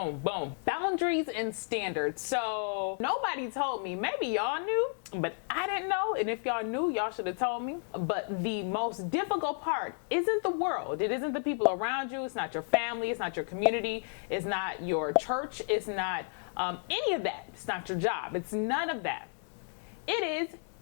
boom. Boundaries and standards. So nobody told me. Maybe y'all knew, but I didn't know. And if y'all knew, y'all should have told me. But the most difficult part isn't the world. It isn't the people around you. It's not your family. It's not your community. It's not your church. It's not any of that. It's not your job. It's none of that. It is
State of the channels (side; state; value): right; silent; 56 dB below the other